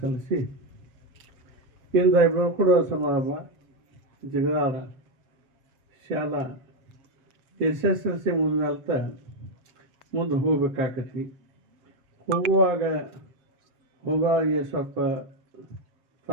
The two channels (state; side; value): late; left; 7.5 ms